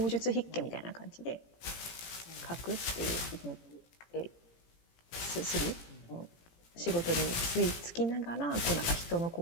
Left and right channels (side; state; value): right; late; 17 ms